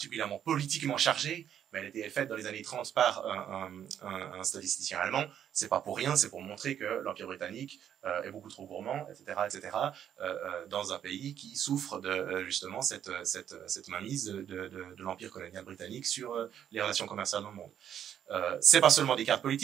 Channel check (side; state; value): left; quieter; 9.6 dB